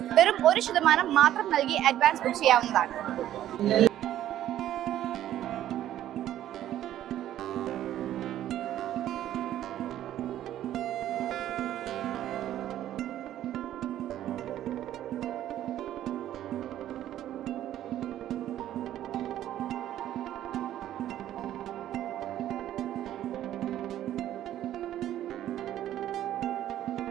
വെറും 1% മാത്രം നൽകി അഡ്വാൻസ് ബുക്ക് ചെയ്യാവുന്നതാണ്.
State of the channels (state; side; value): quieter; left; 12.2 dB